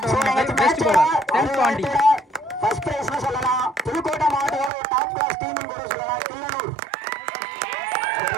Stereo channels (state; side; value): drops out; left; at 4.7 s